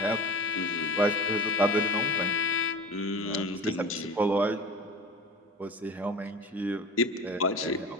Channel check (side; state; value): both; normal; correlation 0.34